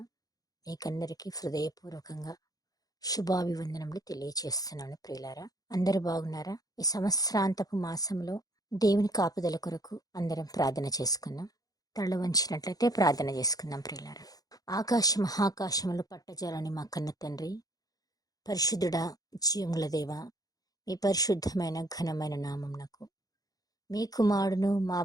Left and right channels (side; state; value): right; late; 0.18 ms